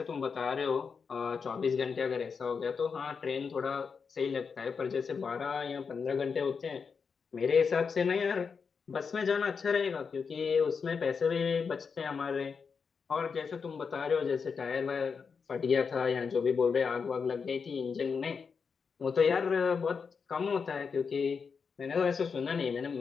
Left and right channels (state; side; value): quieter; right; 5.7 dB